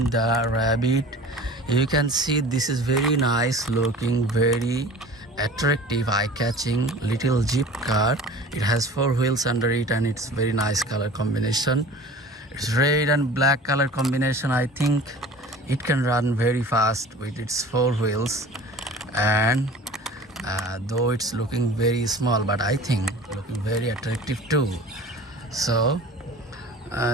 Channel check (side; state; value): both; normal; correlation 0.41